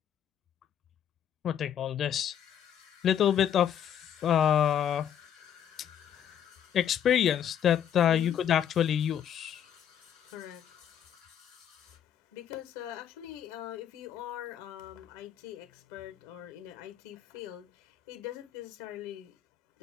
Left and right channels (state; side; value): quieter; right; 9.4 dB